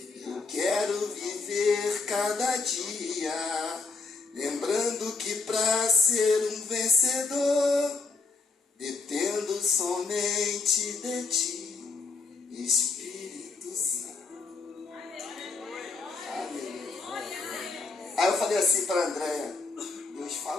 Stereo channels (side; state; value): right; quieter; 4.0 dB